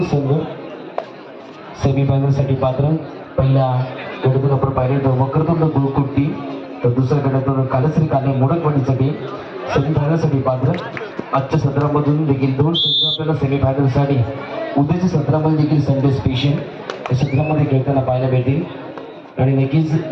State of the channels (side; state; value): both; identical; correlation 1.00